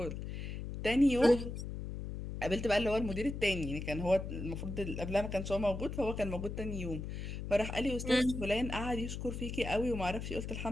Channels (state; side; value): noise; left; hum, 6 dB below the sound